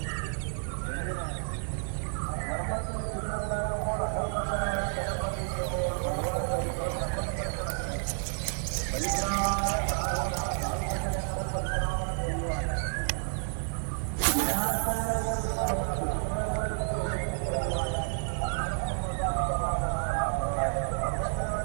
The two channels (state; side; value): silent; left; digital silence